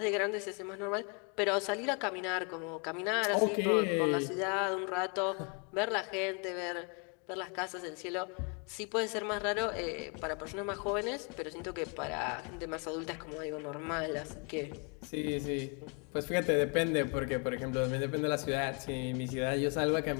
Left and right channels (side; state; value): right; quieter; 35.9 dB